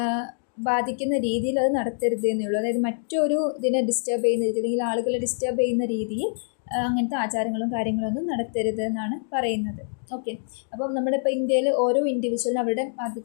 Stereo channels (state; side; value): silent; right; digital silence